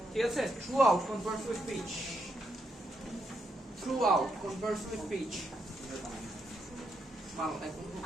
ঠিক আছে, throughout converts with speech, throughout converts with speech। ভালো দেখো,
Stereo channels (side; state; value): both; normal; correlation 0.79